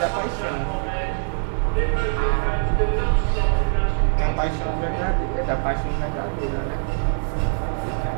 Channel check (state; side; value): silent; left; 63 dB below the other